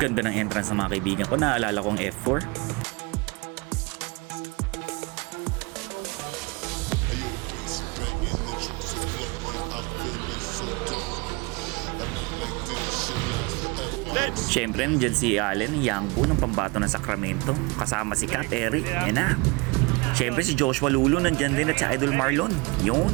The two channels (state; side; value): quieter; left; 27.5 dB